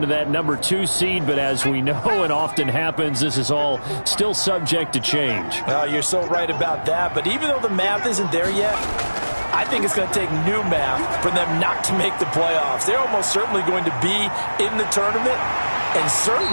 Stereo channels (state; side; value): inverted; both; correlation -1.00